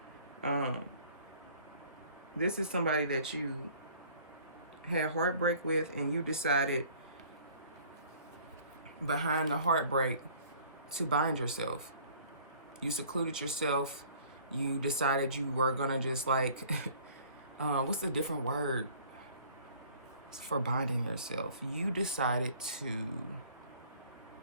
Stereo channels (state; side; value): inverted; both; correlation -0.53